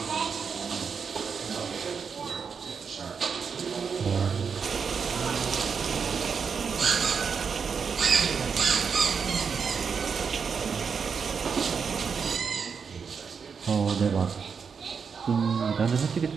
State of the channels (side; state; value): left; quieter; 6.1 dB